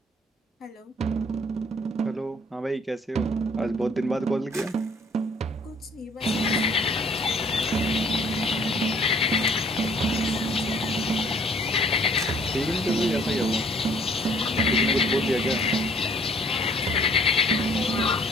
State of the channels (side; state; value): both; normal; correlation 0.58